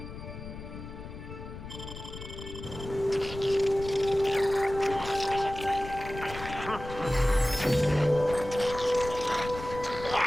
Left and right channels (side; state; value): left; noise; rumble, 11 dB below the sound